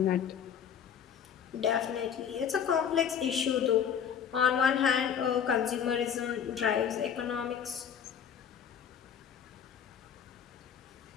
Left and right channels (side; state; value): right; quieter; 8.1 dB